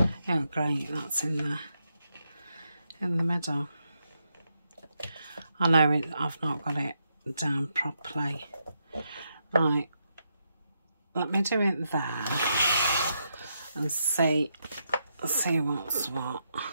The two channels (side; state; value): both; inverted; correlation -0.82